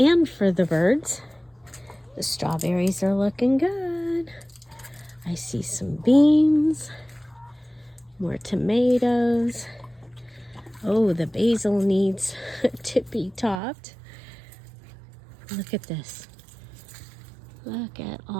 for the birds. The strawberries are looking good. I see some beans, more tomatoes. Oh, the basil needs to be topped. Look at this. Look at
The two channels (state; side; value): drops out; left; at 13.6 s